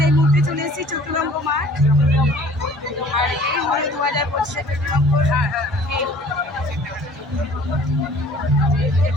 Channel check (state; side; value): normal; both; correlation 0.51